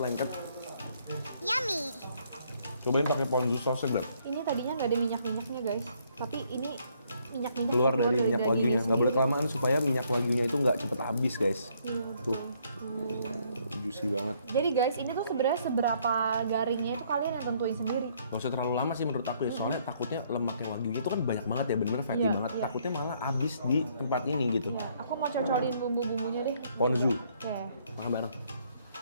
Yummy. Cobain pakai ponzu sausnya, Beb. Ini tadinya nggak ada minyak-minyaknya guys, tapi ini minyak-minyak Keluar dari minyak dagingnya wagyunya. Nggak sendiri. boleh kelamaan supaya minyak wagyunya itu nggak cepet habis guys. Iya. Tuh, juicy banget. Jadi guys, ini tuh sebenarnya seberapa garingnya itu kalian yang tentuin sendiri. Gak usah terlalu lama sih menurut aku ya, soalnya takutnya lemaknya wagyunya itu kan banyak banget ya, bener-bener fatty Iya, banget. iya. Takutnya malah habis di tempat ini gitu. Ya, aku mau cocolin bumbu-bumbunya deh. Ponzu, Oke. makan bareng.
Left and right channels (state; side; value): inverted; both; correlation -0.68